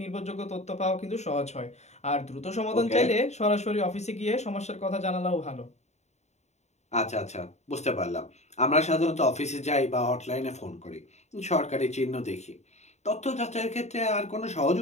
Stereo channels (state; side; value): late; right; 0.32 ms